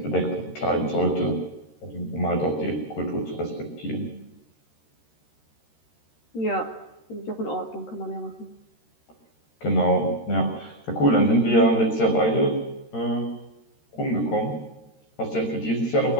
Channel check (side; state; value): right; late; 13 ms